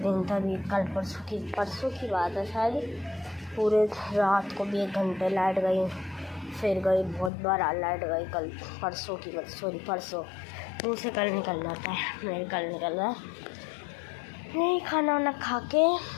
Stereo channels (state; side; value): drops out; right; at 7.3 s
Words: दिन तभी कल परसों की बात है शायद, पूरे रात को भी 1 घंटे लाइट गई, फिर गई, बहुत बार लाइट गई। कल परसों की बात, सॉरी परसों, मुँह से कल निकल जाता है, मेरे कल निकल रहा है। नहीं, खाना वाना खा के